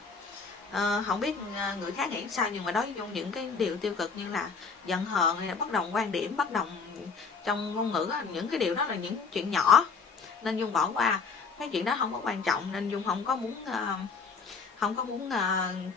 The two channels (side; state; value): right; quieter; 5.1 dB